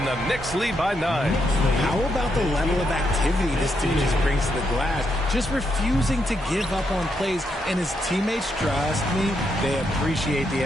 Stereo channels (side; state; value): both; normal; correlation 0.80